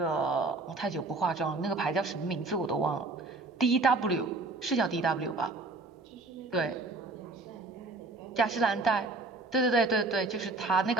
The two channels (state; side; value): quieter; left; 3.3 dB